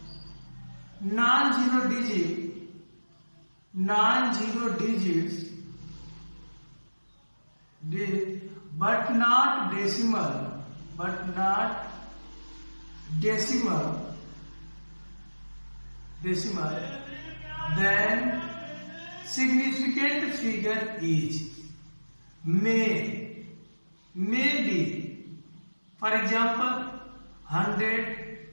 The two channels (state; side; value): inverted; both; correlation -1.00